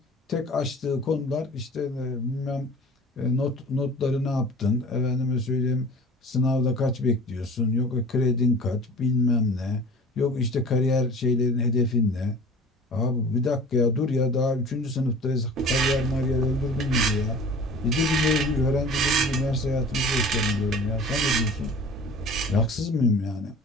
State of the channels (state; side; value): normal; both; correlation 0.42